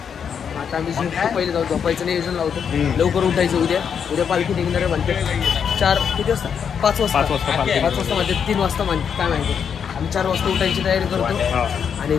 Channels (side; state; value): right; quieter; 7.3 dB